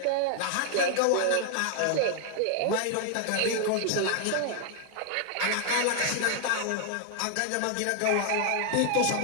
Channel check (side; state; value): both; different; correlation 0.00